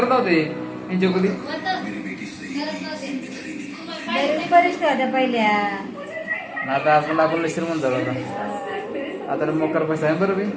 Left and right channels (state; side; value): identical; both; correlation 1.00